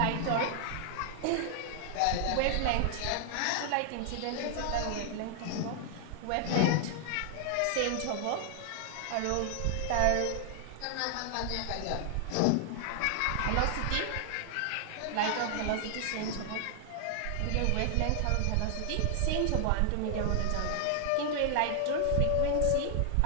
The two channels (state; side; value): different; both; correlation 0.00